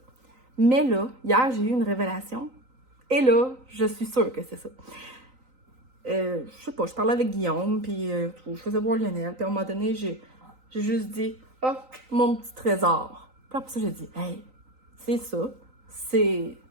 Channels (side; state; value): left; late; 3.9 ms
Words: Mais là, hier, j'ai eu une révélation, et là, je suis sûre que c'est ça. Je sais pas, je parlais avec Guillaume, puis je faisais voir Lionel, puis à un moment donné, j'ai juste dit, mon petit trésor. Puis après ça, j'ai dit, hey, c'est ça, c'est